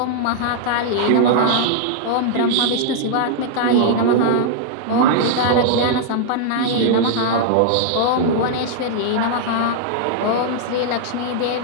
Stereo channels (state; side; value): different; both; correlation -0.01